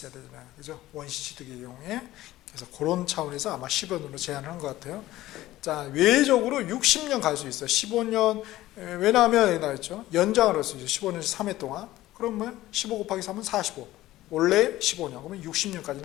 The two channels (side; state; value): right; quieter; 15.8 dB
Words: 되잖아요. 그죠? 원시취득의 경우에. 그래서 그런 차원에서 아마 10원으로 제한을 한 것 같아요. 자, 외적으로 60년 갈 수 있어요. 15년, 왜냐하면, 나왔죠. 연장을 할 수 있죠. 15년 3회 동안. 그러면 15 곱하기 3은 45. 원래 15년. 그러면